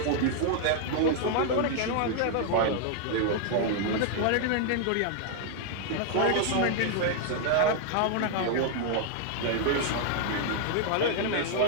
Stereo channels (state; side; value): different; both; correlation 0.00